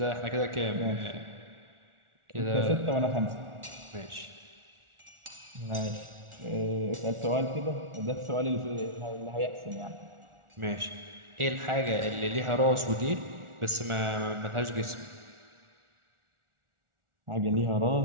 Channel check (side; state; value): left; late; 1.4 ms